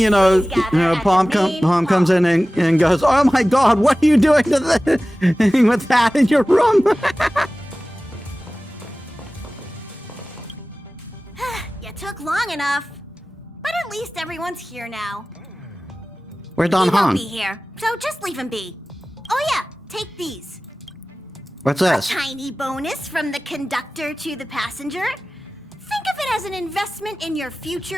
know, Pom comes in and goes, "Oh my God, what are you doing to the with that in your room?" You took long enough, but at least everyone's here now. Where's Don He won't Han? be here, so just leave him be. Oh yeah, take these. What's this? A tiny bonus from the conductor to the passenger. Think of it as an investment in your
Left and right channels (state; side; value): normal; both; correlation 0.97